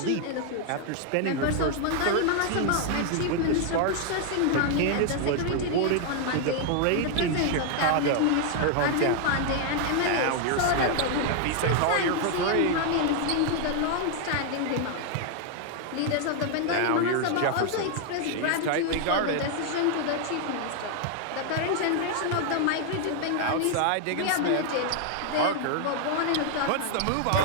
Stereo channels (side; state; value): both; different; correlation 0.00